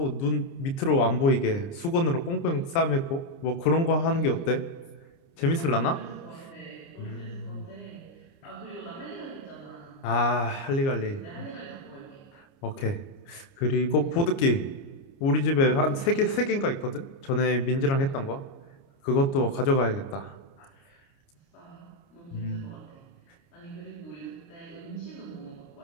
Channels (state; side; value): late; right; 29 ms